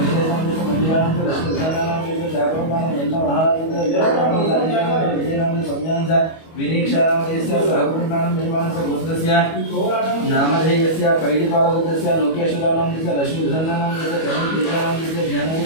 नामधेयस्य मंदिरा नामधेयस्य लक्ष्मी सुधारा नामधेयस्य साकुरमान यल्ल महाराज विजय नामधेयस्य संज्ञानस्य विनीक्षा नामधेयस्य साकुरमान निर्माणस्य गोत्रस्य नामधेयस्य पैडिपाल गोत्रस्य लोकेश्वर नामधेयस्य लक्ष्मी सुधारा नामधेयस्य चरण तेजा नामधेयस्य ज्ञानरूप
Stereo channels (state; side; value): late; right; 25 ms